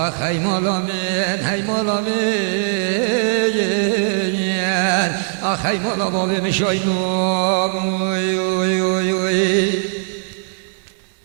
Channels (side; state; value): left; silent; digital silence